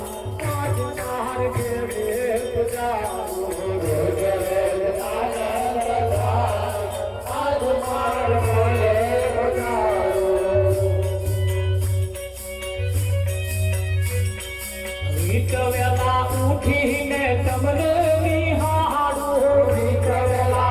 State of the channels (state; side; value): identical; both; correlation 1.00